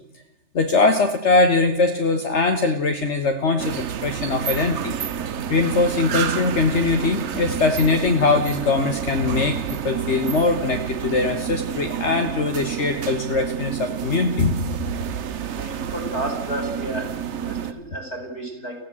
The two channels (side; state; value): right; late; 3.3 ms